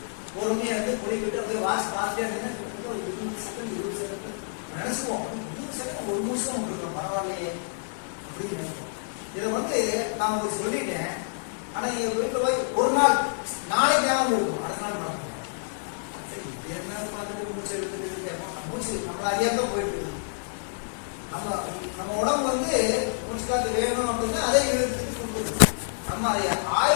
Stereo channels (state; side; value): silent; right; 60 dB below the other